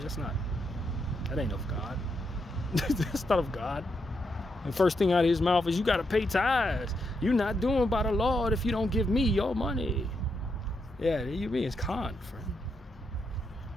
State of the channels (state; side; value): normal; both; correlation 0.81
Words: ain't of God. That's not of God. And first thing out of his mouth is, you got to pay tithes. You're not doing by the Lord if you don't give me your money. Yeah, you being con, friend.